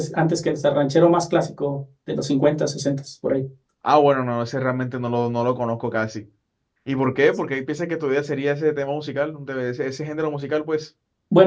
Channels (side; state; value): both; identical; correlation 1.00